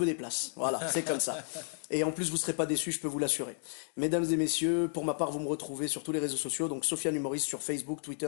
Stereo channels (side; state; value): right; silent; 56 dB below the other